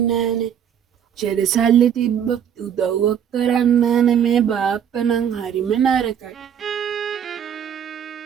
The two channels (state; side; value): quieter; left; 8.7 dB